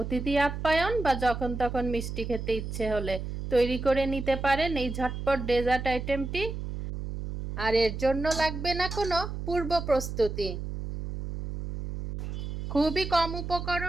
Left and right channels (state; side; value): noise; right; hum, 6 dB below the sound